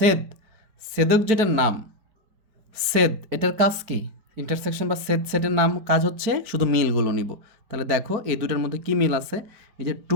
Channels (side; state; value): left; late; 4.9 ms